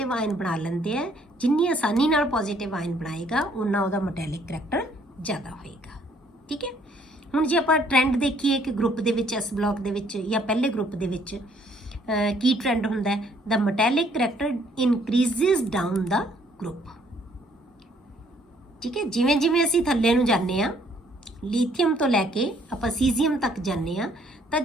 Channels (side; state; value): both; normal; correlation 0.64